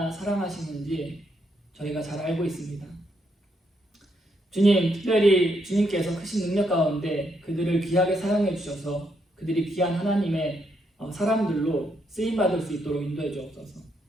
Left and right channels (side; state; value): both; normal; correlation 0.77